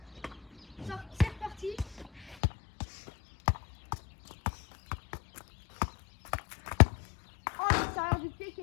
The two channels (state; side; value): drops out; right; at 2.4 s